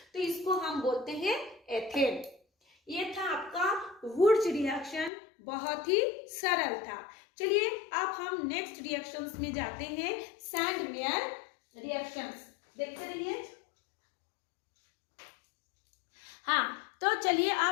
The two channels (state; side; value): drops out; right; at 5.1 s